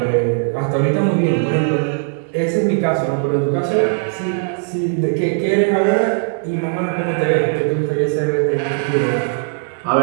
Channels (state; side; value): silent; left; digital silence